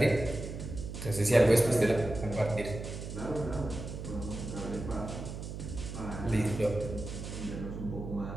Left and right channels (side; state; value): right; noise; hum, 8 dB below the sound